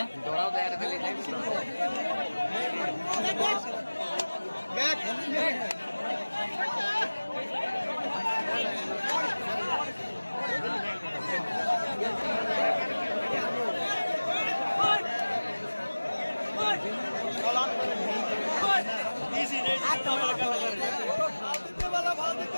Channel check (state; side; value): inverted; both; correlation -1.00